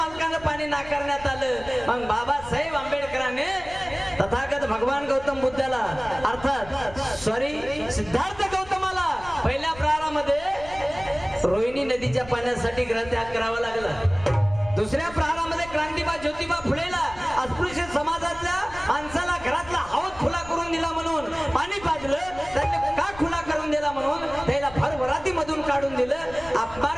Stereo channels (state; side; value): noise; left; rumble, 17 dB below the sound